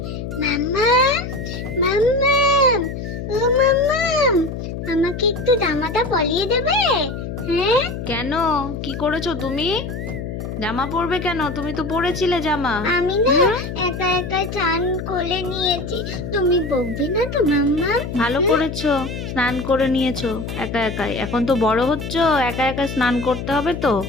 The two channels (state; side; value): noise; left; hum, 6 dB below the sound